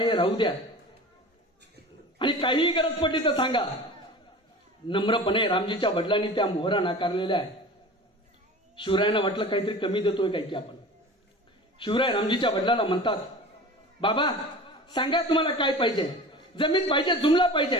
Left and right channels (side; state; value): both; normal; correlation 0.37